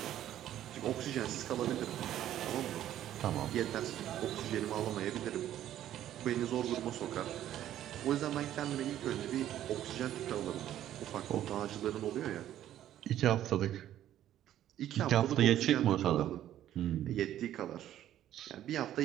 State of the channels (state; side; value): quieter; left; 12.0 dB